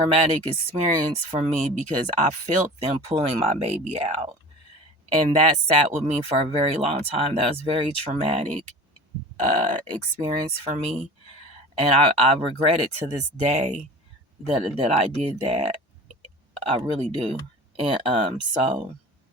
experience for me, because I felt them pulling my baby out. And that sat with me for a very long time. That was very traumatic experience for me. And I regret it to this day that I did that. I really do. And so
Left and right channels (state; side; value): normal; both; correlation 0.37